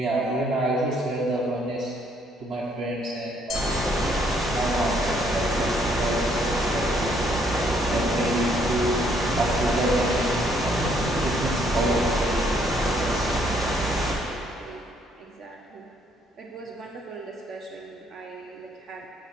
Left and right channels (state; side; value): normal; both; correlation 0.68